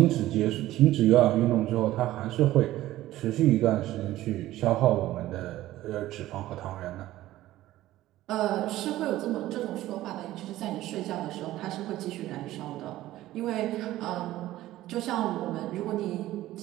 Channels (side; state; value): left; quieter; 15.3 dB